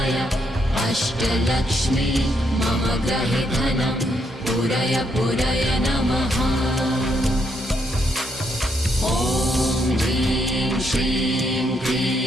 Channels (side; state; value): both; normal; correlation 0.76